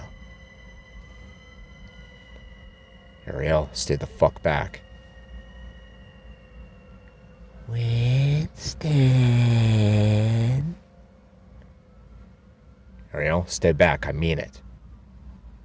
Ariel, stay the fuck back. Winston. Ariel, stay back. I mean it.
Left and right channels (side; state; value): both; identical; correlation 1.00